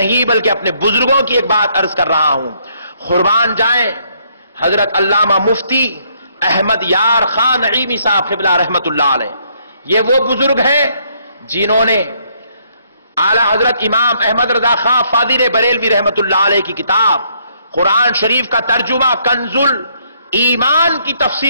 بلکہ اپنے بزرگوں کی ایک بات عرض کر رہا ہوں, قربان جائیں حضرت علامہ مفتی احمد یار خان نعیمی صاحب قبلہ رحمت اللہ علیہ. یہ وہ بزرگ ہیں جنہوں نے اعلی حضرت امام احمد رضا خان فاضل بریلوی رحمت اللہ علیہ کی کتاب قرآن شریف کا ترجمہ کنز ایمان کی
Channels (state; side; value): inverted; both; correlation -0.70